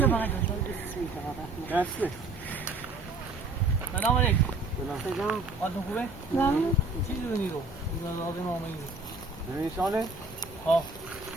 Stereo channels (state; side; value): quieter; left; 3.3 dB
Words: دسته سلام علیکم سلام حالتون خوبه؟ چی دونی رو؟ اجازه نامه این نمیشانه؟ ها